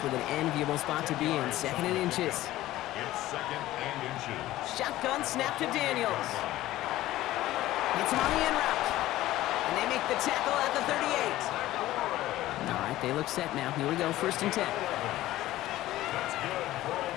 with an enviable spot to be in. 2nd and inches. It's 2nd and inches. Shotgun snap to Daniels. Gets him on the in route. And they make the tackle at the 38. All right, they look set now. Here we go, 1st and 10. That's good for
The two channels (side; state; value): right; quieter; 15.5 dB